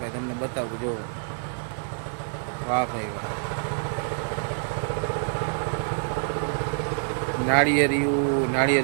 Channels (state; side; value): silent; left; 61 dB below the other